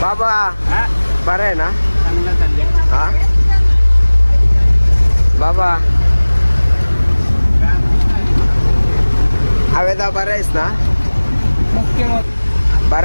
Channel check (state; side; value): inverted; both; correlation -1.00